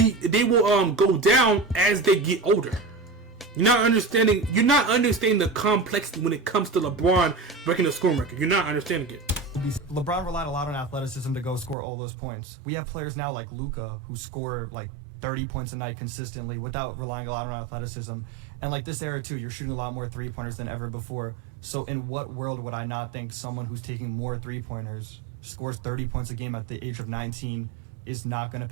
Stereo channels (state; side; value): drops out; left; at 11.8 s